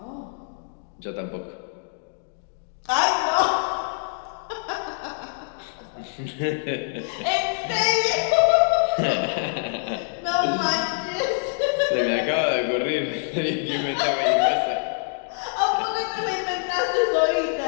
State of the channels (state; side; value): silent; right; digital silence